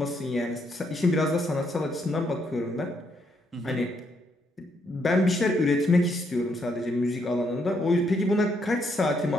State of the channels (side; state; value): both; normal; correlation 0.74